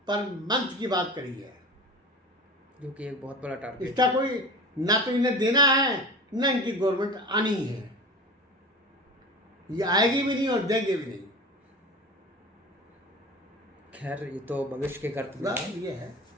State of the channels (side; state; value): both; normal; correlation 0.33